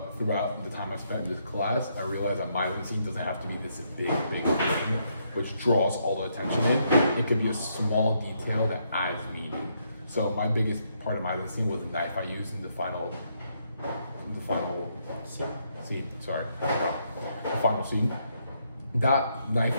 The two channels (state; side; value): inverted; both; correlation -0.75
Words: throughout the time I spent in this class, I realized that Meisenstein doesn't have to be this big thing which draws all the attention in. It could be a small detail that adds meaning. So my biggest part of Meisenstein was the knife I used in the final scene. Sorry, the final scene. That knife